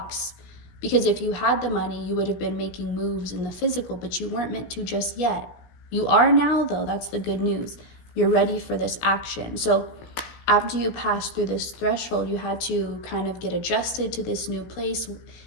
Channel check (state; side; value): late; right; 17 ms